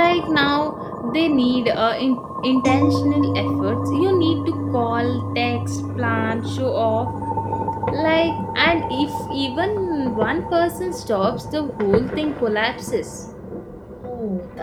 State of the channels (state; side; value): identical; both; correlation 1.00